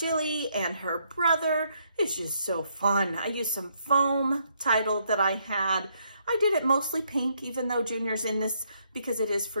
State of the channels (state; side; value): inverted; both; correlation -0.74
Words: and her brother. It's just so fun. I used some foam title that I had. I did it mostly pink, even though Junior's in this because it is